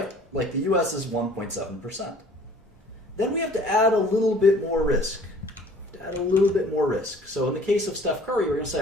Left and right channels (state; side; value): normal; both; correlation 0.51